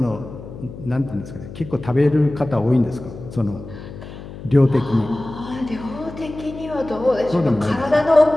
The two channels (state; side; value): noise; left; hum, 13 dB below the sound